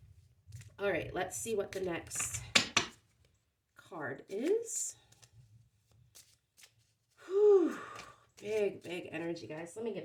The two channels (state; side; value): identical; both; correlation 1.00